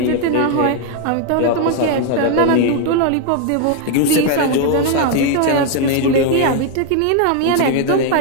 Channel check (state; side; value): different; both; correlation 0.00